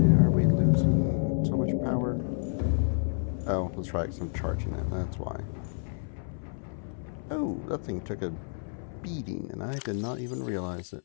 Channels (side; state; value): right; silent; 58 dB below the other